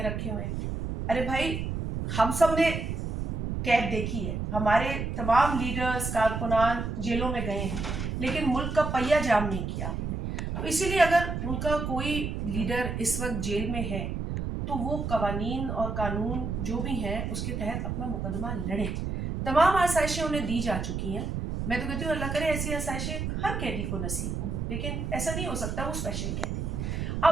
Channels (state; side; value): noise; right; rumble, 3 dB below the sound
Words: رکھے ہوئے ہیں. ارے بھائی ہم سب نے قید دیکھی ہے, ہمارے تمام لیڈرز کارکنان جیلوں میں گئے ہیں, لیکن ملک کا پہیہ جام نہیں کیا ہم نے. تو اسی لیے اگر ان کا کوئی لیڈر اس وقت جیل میں ہے تو وہ قوانین اور قانون جو بھی ہیں اس کے تحت اپنا مقدمہ لڑیں. تمام آسائشیں انہیں دی جا چکی ہیں. میں تو کہتی ہوں اللہ کرے ایسی آسائشیں ہر قیدی کو نصیب ہوں, لیکن ایسا نہیں ہو سکتا, وہ اسپیشل قیدی ہے.